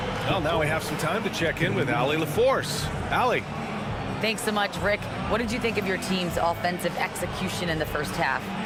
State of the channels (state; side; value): identical; both; correlation 1.00